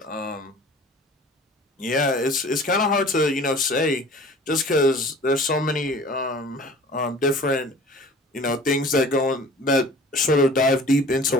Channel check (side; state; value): both; normal; correlation 0.45